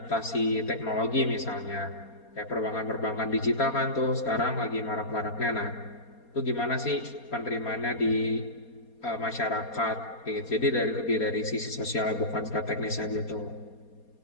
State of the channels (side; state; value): right; late; 4.3 ms